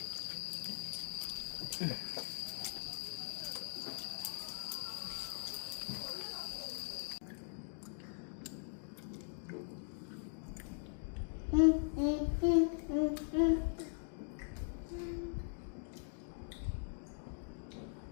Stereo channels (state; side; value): silent; right; digital silence